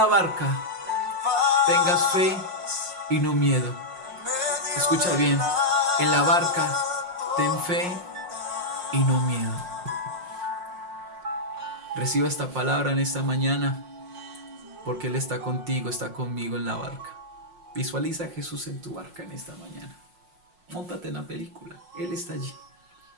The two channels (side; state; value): left; late; 5.6 ms